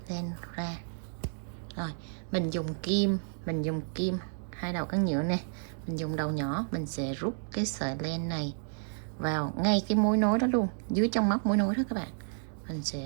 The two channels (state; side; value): silent; left; digital silence